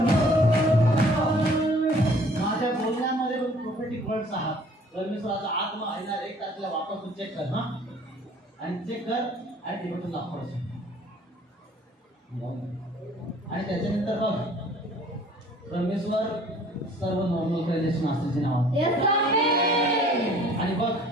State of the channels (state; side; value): normal; both; correlation 0.54